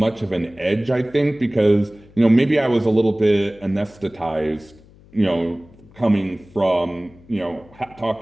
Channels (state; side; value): noise; left; hum, 25 dB below the sound